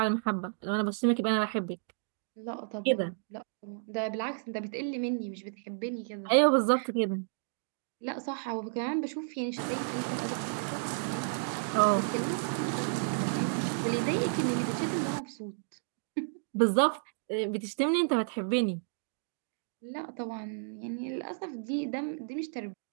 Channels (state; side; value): silent; left; digital silence